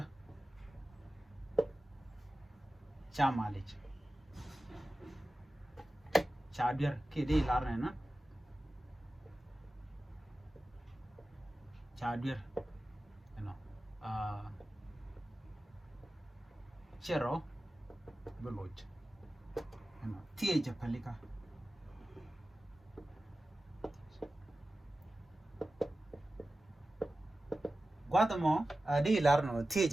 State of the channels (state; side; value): normal; both; correlation 0.95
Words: sha ma lich shadir ke di lar na shadir ano chero buluch ano tie je palika gwada mo di lar no tie